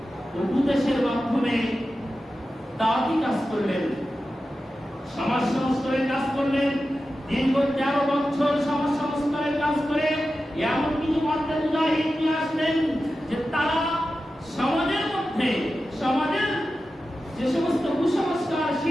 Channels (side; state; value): both; normal; correlation 0.92